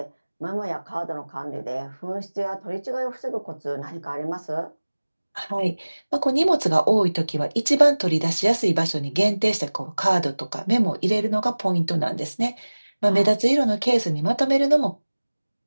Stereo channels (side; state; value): both; inverted; correlation -1.00